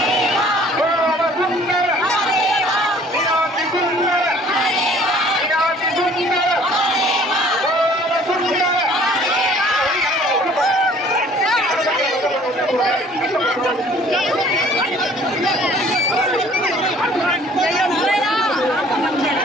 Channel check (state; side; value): normal; both; correlation 0.54